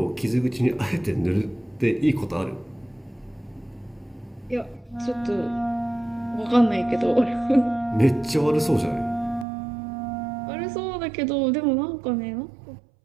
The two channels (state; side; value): drops out; left; at 9.5 s